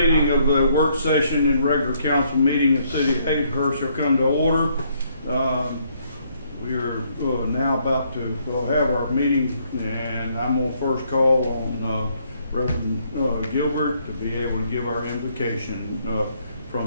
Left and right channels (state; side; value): inverted; both; correlation -0.70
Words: of the work session and regular council meeting in the city of Hazelhurst shall come to order. We are now about to have our meeting, and I'm going to first call on Reverend Gilbert to be able to give our invocation